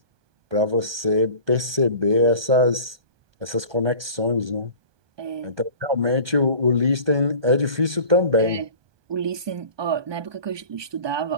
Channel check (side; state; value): left; late; 1.2 ms